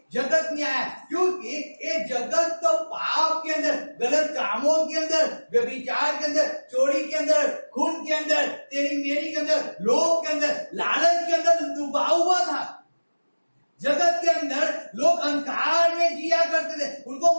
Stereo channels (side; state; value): both; inverted; correlation -1.00